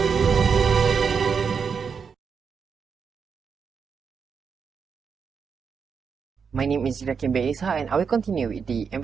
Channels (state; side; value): quieter; left; 6.1 dB